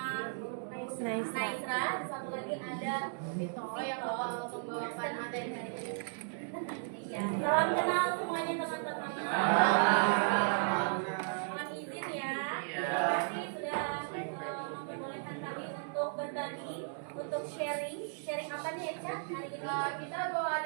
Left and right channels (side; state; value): left; silent; digital silence